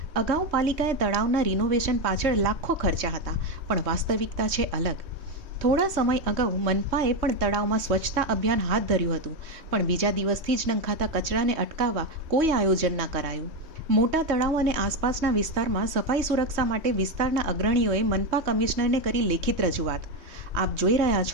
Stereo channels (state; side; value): late; left; 3.2 ms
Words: અગાઉ પાલિકાએ તળાવના રિનોવેશન પાછળ લાખો ખર્ચા હતા, પણ વાસ્તવિકતા છે અલગ. થોડા સમય અગાઉ મનપાએ પણ તળાવમાં સ્વચ્છતા અભિયાન હાથ ધર્યું હતું, પણ બીજા દિવસથી જ નંખાતા કચરાને અટકાવવા કોઈ આયોજન ના કરાયું. મોટા તળાવ અને આસપાસના વિસ્તારમાં સફાઈ સુરક્ષા માટે વિસ્તારના અગ્રણીઓએ મનપા કમિશનરને કરી લેખિત રજૂઆત. આપ જોઈ રહ્યા